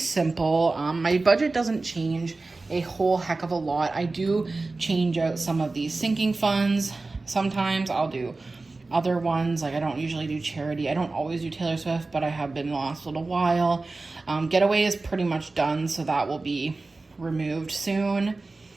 My budget doesn't change a whole heck of a lot. I do change out some of these sinking funds. Sometimes I'll do other ones. Like I don't usually do charity. I don't always do Taylor Swift, but I have been the last little while. Getaway is pretty much done, so that will be removed soon.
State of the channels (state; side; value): quieter; left; 3.5 dB